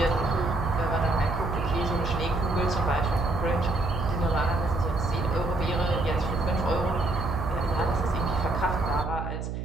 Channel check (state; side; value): noise; right; hum, 5 dB below the sound